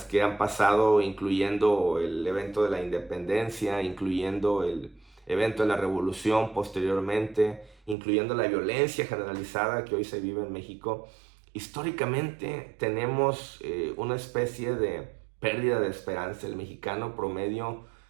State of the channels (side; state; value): left; drops out; at 8.0 s